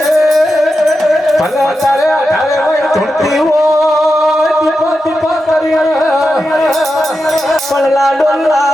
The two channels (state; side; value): normal; both; correlation 0.89